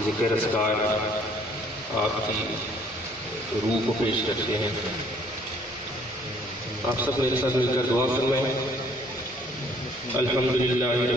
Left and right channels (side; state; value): both; normal; correlation 0.60